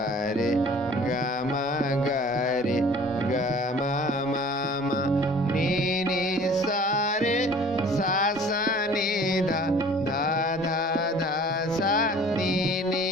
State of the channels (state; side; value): normal; both; correlation 0.49